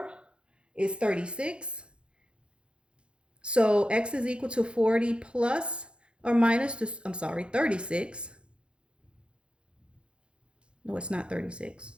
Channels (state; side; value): late; left; 0.056 ms